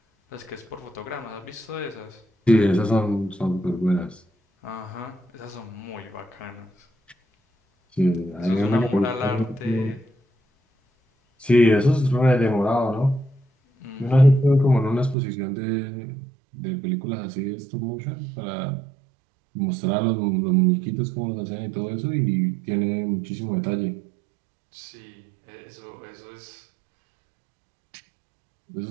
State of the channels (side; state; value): left; drops out; at 15.2 s